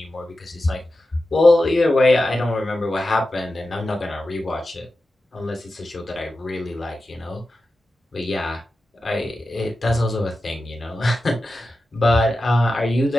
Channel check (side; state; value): both; normal; correlation 0.92